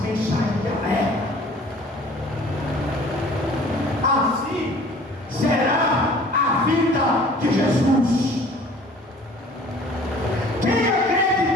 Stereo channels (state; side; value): normal; both; correlation 0.49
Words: mensagens de alerta. Assim será a vida de Jesus. Quem